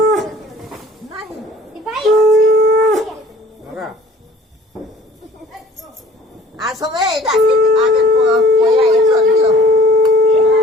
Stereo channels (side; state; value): both; normal; correlation 0.51